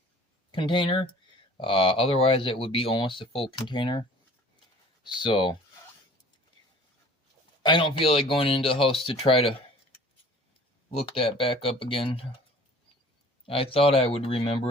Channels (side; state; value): both; normal; correlation 0.48